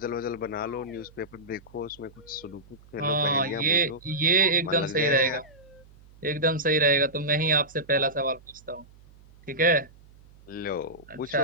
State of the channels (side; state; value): right; noise; hum, 25 dB below the sound